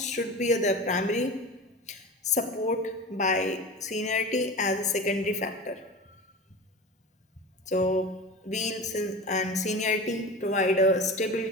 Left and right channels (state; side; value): normal; both; correlation 0.31